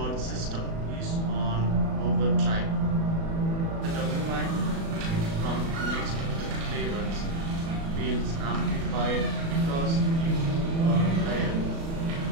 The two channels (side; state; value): left; late; 36 ms